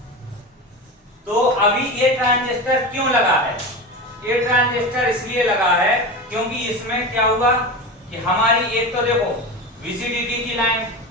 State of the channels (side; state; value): both; normal; correlation 0.25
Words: तो अभी ये ट्रांजिस्टर क्यों लगा है? ये ट्रांजिस्टर इसलिए लगा है क्योंकि इसमें क्या हुआ कि हमारी एक तो देखो VCDT की लाइन,